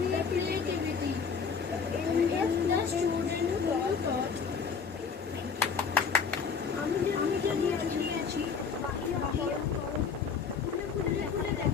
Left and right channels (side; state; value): right; quieter; 5.8 dB